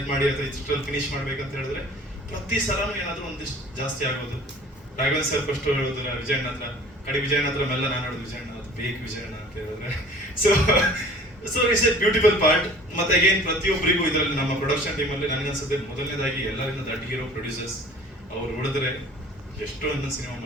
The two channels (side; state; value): both; normal; correlation 0.47